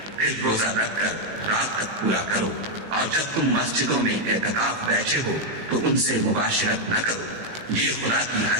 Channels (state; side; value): late; left; 18 ms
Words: پھر روزہ رکھ کر رات تک پورا کرو، اور جب تم مسجدوں میں اعتکاف بیٹھے ہو تو ان سے مباشرت نہ کرو، یہ خدا کی